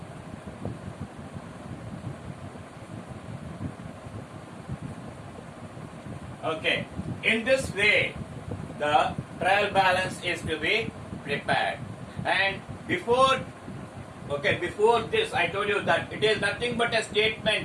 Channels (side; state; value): both; identical; correlation 1.00